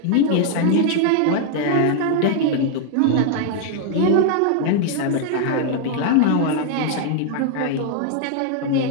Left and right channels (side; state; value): both; different; correlation 0.00